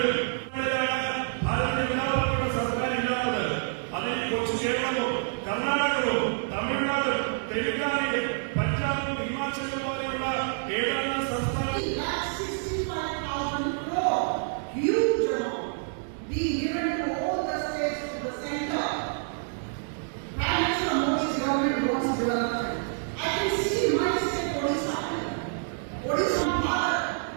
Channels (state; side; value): silent; left; digital silence